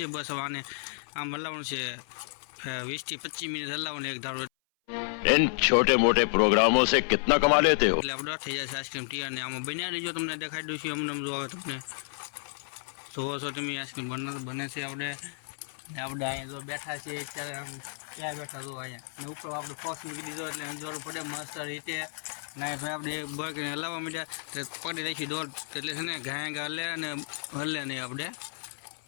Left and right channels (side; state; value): right; silent; 57 dB below the other